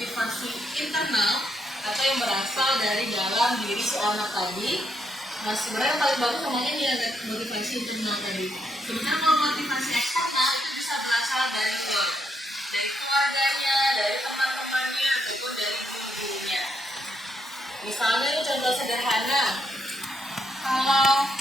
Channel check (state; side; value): normal; both; correlation 0.77